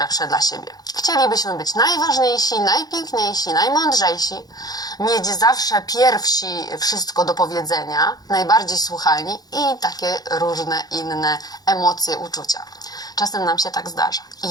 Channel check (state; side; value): late; right; 0.19 ms